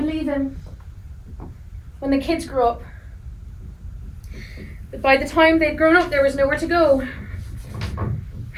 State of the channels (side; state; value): both; identical; correlation 1.00